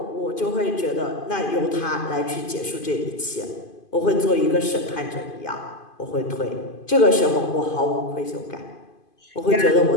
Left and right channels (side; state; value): right; late; 2.5 ms